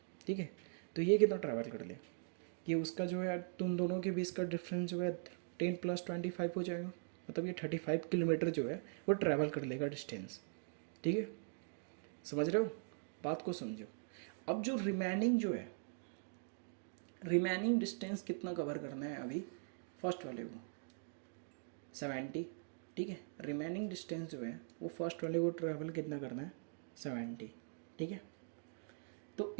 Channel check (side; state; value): left; silent; digital silence